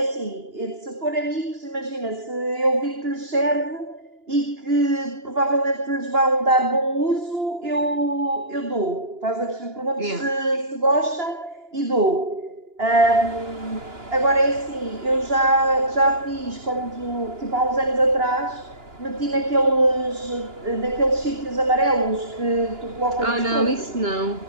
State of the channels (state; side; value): late; left; 2.9 ms